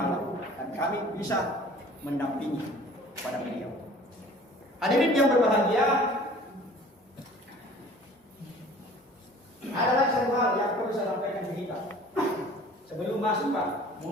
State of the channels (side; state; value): both; normal; correlation 0.48